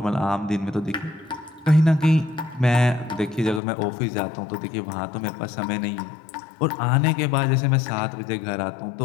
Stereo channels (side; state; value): right; drops out; at 3.6 s